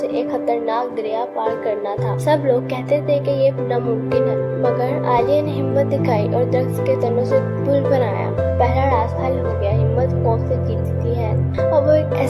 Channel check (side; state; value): both; identical; correlation 1.00